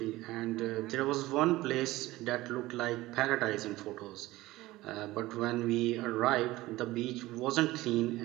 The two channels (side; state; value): left; quieter; 18.1 dB